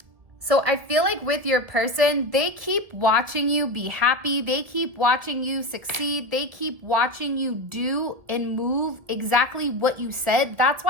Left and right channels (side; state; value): left; late; 1.8 ms